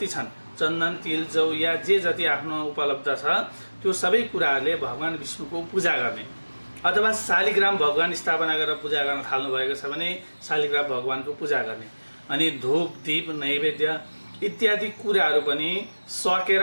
छन्, चन्दन, तिल, जौ या जे जति आफ्नो उपलब्ध छ त्यो सबै कुराहरूले भगवान विष्णुको पूजा गर्ने। अथवा शालिग्राम भगवान स्थापना गरेर पूजा गर्न थाल्नु भएको छ भने शालिग्राम भगवानको पूजा गर्ने। अनि धूप, दीप, नैवेद्य इत्यादि कुराहरू पनि सकेर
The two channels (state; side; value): inverted; both; correlation -1.00